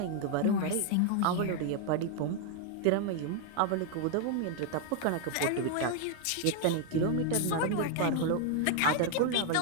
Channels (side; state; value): both; different; correlation 0.00